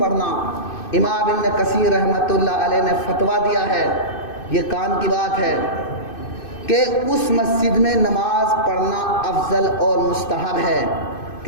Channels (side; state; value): right; late; 2.6 ms